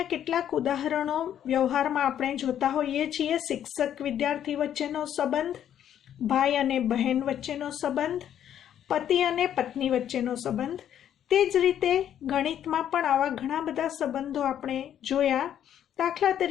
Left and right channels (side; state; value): right; quieter; 10.2 dB